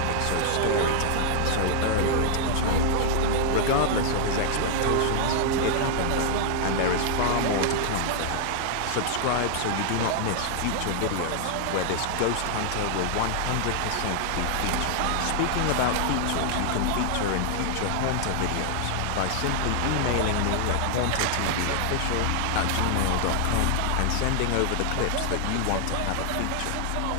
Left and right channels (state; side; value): different; both; correlation 0.00